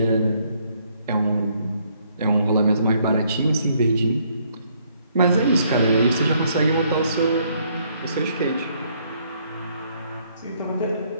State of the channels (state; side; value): inverted; both; correlation -0.68